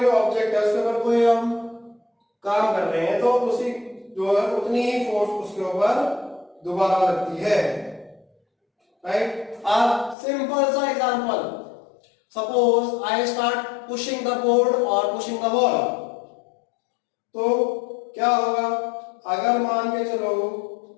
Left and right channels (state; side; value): drops out; right; at 10.2 s